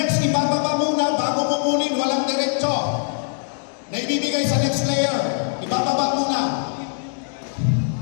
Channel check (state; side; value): silent; right; 62 dB below the other